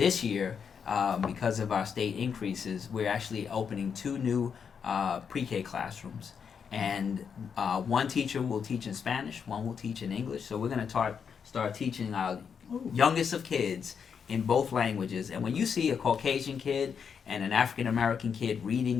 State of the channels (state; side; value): quieter; right; 6.8 dB